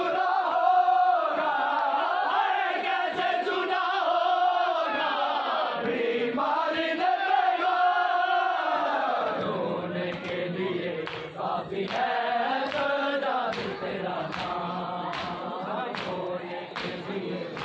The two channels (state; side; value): identical; both; correlation 1.00